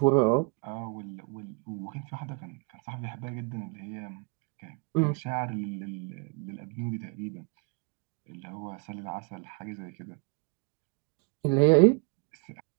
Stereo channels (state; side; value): quieter; left; 33.6 dB